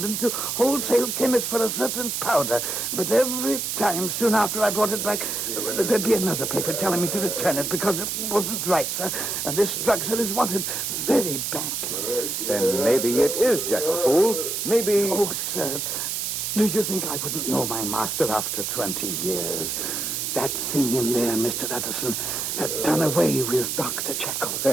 to wholesale chemists for a certain powder. But every time, soon after I brought it back, there'd be another paper telling me to return it because it wasn't right, sir. And this drug, sir, is wanted very badly. Then maybe it is Jekyll, fool. Maybe... Oh, sir, do you think I wouldn't know my master after 20 years? That thing in there, Mr. Addison, had done away with Dr. Jekyll.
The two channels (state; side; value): noise; right; hiss, 2 dB below the sound